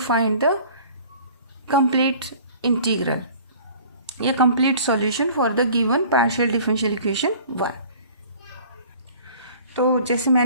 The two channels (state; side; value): inverted; both; correlation -0.48